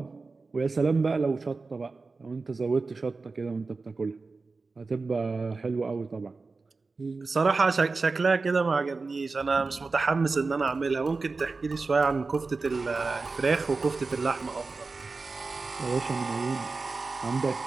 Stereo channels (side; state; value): left; quieter; 4.0 dB